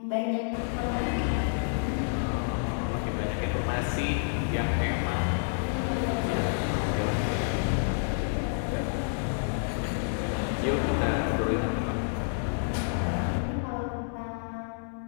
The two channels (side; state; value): right; silent; 59 dB below the other